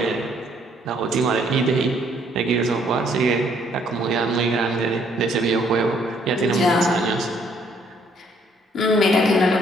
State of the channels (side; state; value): both; normal; correlation 0.66